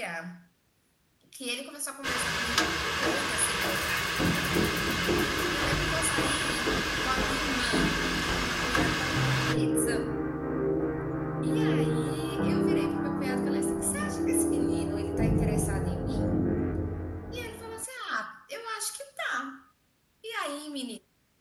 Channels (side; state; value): both; identical; correlation 1.00